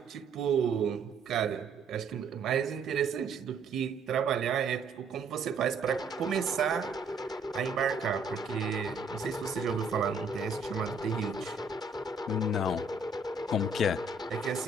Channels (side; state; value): left; quieter; 3.6 dB